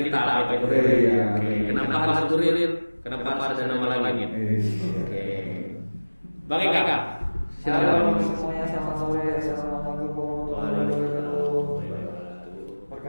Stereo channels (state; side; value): inverted; both; correlation -1.00